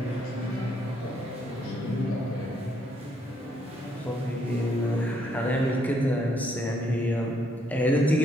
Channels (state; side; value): normal; both; correlation 0.71